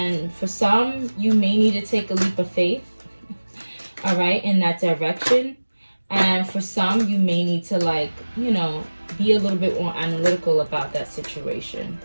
for some, you may need to take a leap of faith, all right, in that direction. And for some, you may need to, like, you know, be a little bit more analytical about that situation,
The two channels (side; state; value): both; inverted; correlation -1.00